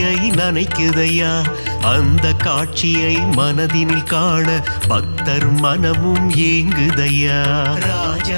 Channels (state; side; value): inverted; both; correlation -1.00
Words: நனைக்குதையா. அந்த காட்சியை மனதினில் காண பக்தர் மனமும் ஏங்குதையா.